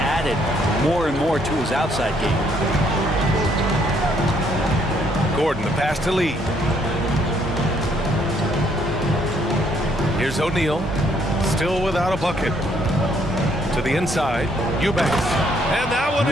more and more to his outside game. Gordon, the pass to Lee. Here's O'Neal, still without a bucket. To the inside, Eubanks. And that one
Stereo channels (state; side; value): normal; both; correlation 0.68